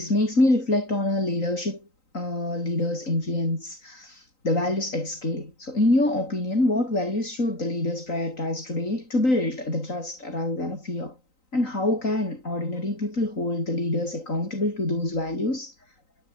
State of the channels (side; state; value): right; late; 3.9 ms